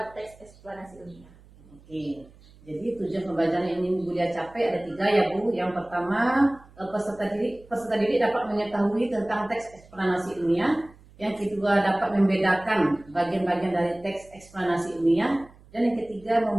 teks eksplanasi ilmiah. Oke. Jadi tujuan pembelajaran yang ingin Bu Lia capai ada 3 ya Bu. Yang pertama, peserta didik dapat mengetahui tentang teks eksplanasi ilmiah. Yang kedua, dapat membedakan bagian-bagian dari teks eksplanasi ilmiah. Dan yang ketiga,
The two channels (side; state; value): right; noise; hum, 25 dB below the sound